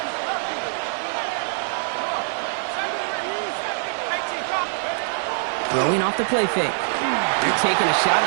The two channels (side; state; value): left; silent; digital silence